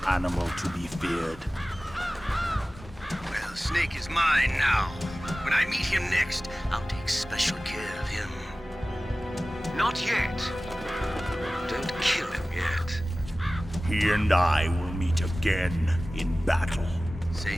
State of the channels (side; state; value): both; normal; correlation 0.97